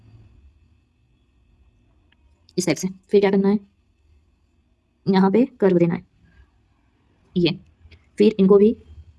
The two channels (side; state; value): both; identical; correlation 1.00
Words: इस टाइप से। फिर क्या करना है, यहाँ पे कर्व देना है, ये। फिर इनको भी